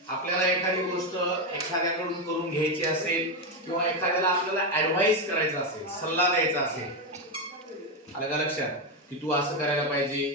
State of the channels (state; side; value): normal; both; correlation 0.09